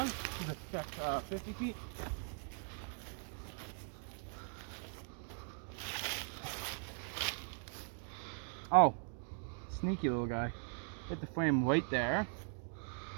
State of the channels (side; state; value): left; silent; 51 dB below the other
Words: Let's check 50 feet. Oh, sneaky little guy. Hit the frame right there.